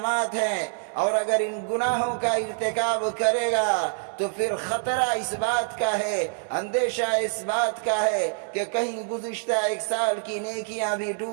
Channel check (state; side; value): silent; left; digital silence